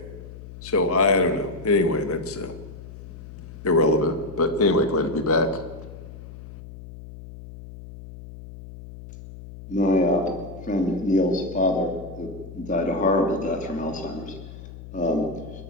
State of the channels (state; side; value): noise; left; hum, 14 dB below the sound